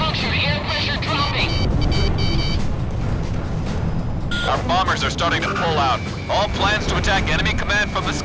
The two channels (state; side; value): identical; both; correlation 1.00